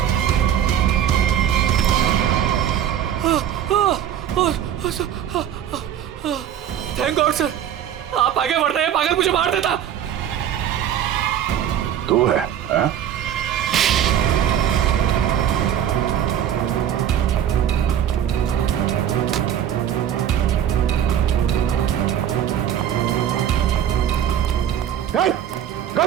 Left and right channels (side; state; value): left; quieter; 9.9 dB